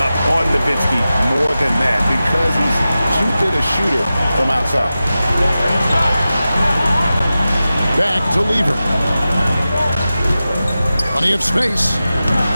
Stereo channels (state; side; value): inverted; both; correlation -0.94